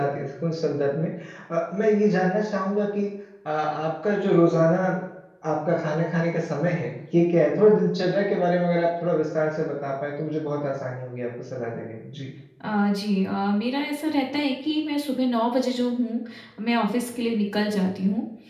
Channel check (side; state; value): both; identical; correlation 1.00